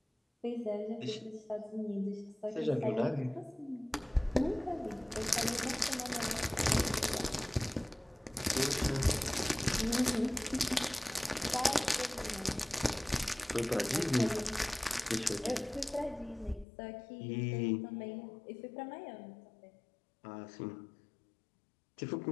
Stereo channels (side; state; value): right; drops out; at 16.7 s